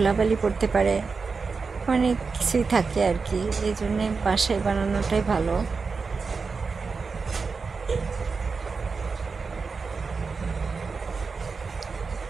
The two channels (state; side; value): quieter; left; 4.8 dB